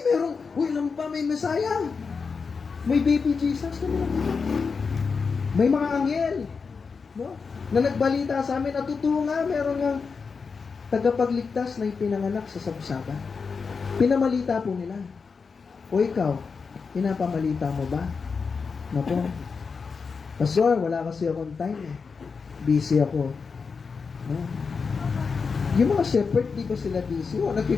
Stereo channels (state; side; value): quieter; right; 5.2 dB